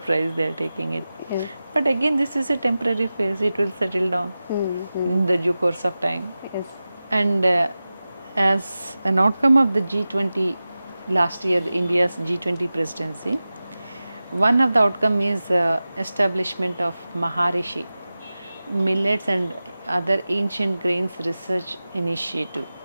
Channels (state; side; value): inverted; both; correlation -0.95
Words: they are taking it. Yes. But again, this is a temporary phase. It will settle down in the due course of time. Yes. And as an outcome of the G20 last year, India's G20 presidency, one of the outcome is establishment of Maharishi millets and other ancient grains research initiative.